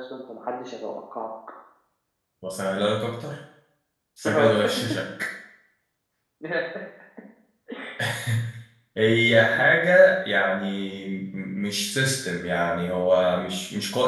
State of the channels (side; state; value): both; identical; correlation 1.00